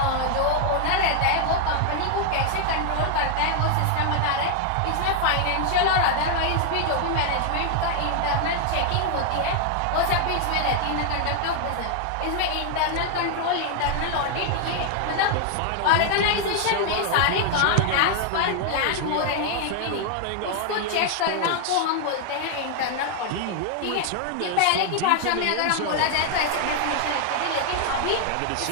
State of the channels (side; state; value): both; different; correlation 0.00